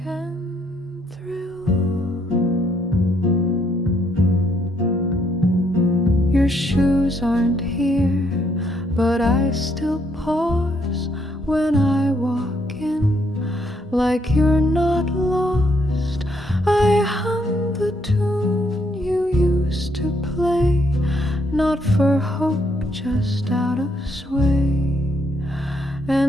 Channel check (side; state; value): both; normal; correlation 0.72